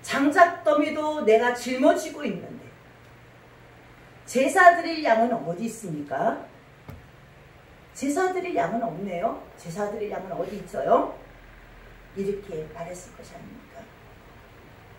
장작더미도 내가 짊어지고 있는데 제사 드릴 양은 어디 있습니까? 제사 드릴 양은 없네요. 제사 드릴 양은 어디 있어요? 이렇게 말했을 것이 아닙니까?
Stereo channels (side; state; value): both; identical; correlation 1.00